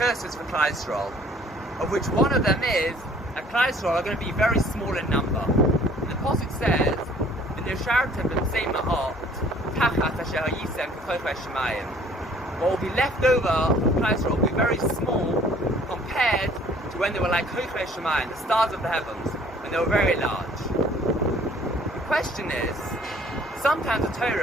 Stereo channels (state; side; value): normal; both; correlation 0.56